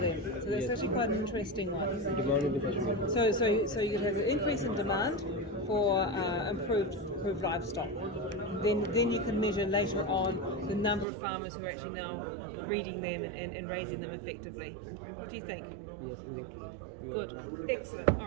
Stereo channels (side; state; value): left; drops out; at 11.1 s